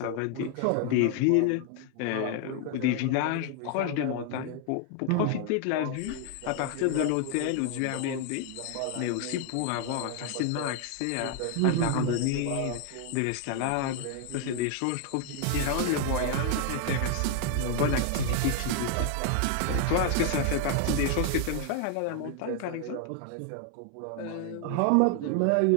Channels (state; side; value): different; both; correlation 0.00